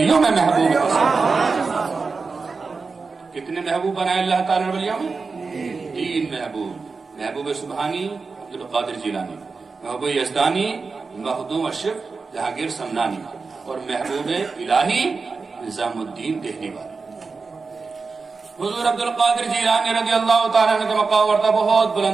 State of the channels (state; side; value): quieter; left; 4.5 dB